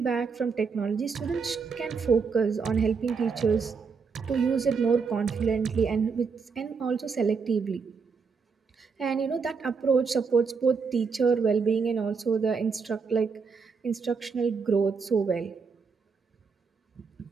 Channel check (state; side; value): quieter; left; 5.3 dB